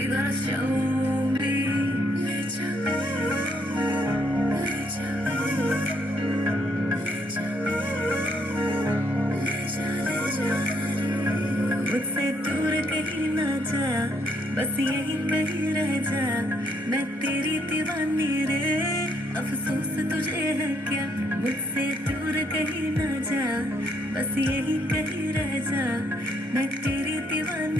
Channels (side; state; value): both; normal; correlation 0.72